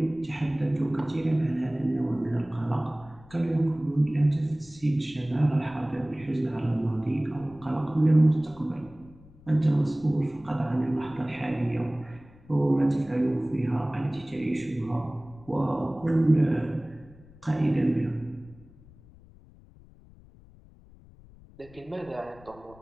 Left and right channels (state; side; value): noise; left; rumble, 23 dB below the sound